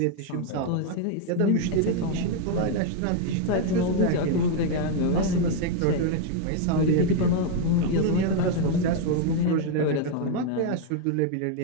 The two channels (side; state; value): both; different; correlation 0.01